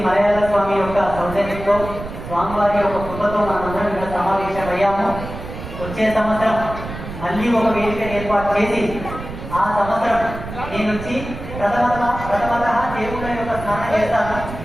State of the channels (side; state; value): right; noise; rumble, 10 dB below the sound